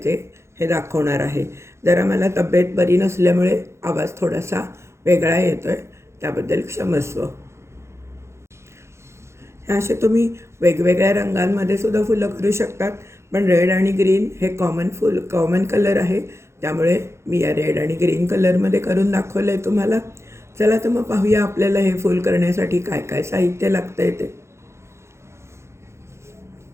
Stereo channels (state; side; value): late; left; 0.13 ms